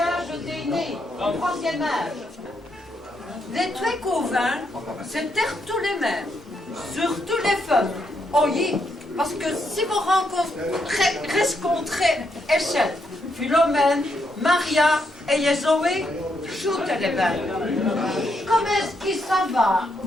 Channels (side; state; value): both; normal; correlation 0.79